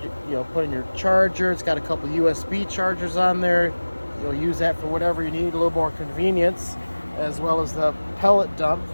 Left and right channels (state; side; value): inverted; both; correlation -1.00